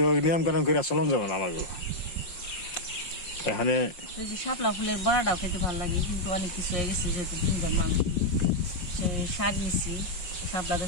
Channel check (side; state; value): right; late; 5.6 ms